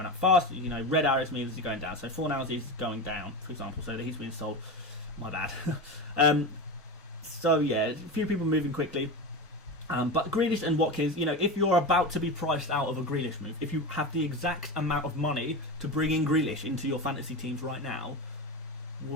up fast. You know, red arrows means he's going down. So 4 hours he's going down, for example. So he's been sold. My bad. So yeah, a few people moving quickly. But Grealish and Watkins, you know, if you're about to be priced out of a Grealish move, if you have the exact amount of money to bring in Grealish into your fantasy teams right now,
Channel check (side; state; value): both; normal; correlation 0.22